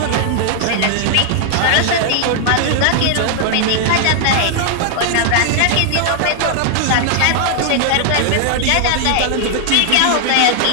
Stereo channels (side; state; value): both; different; correlation -0.01